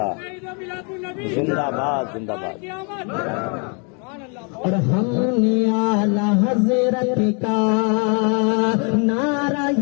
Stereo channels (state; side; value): quieter; right; 36.7 dB